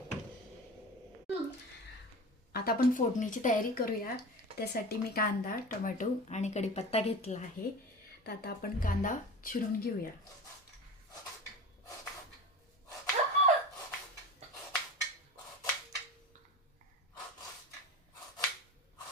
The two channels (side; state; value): both; normal; correlation 0.32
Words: आता आपण फोडणीची तयारी करूया. त्यासाठी मी कांदा, टोमॅटो आणि कढीपत्ता घेतला आहे. तर आता आपण कांदा चिरून घेऊया.